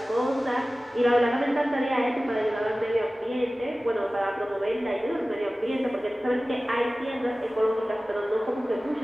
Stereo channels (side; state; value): both; normal; correlation 0.97